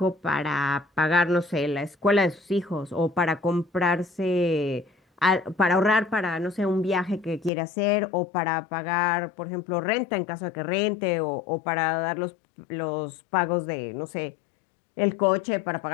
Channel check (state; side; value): drops out; right; at 7.5 s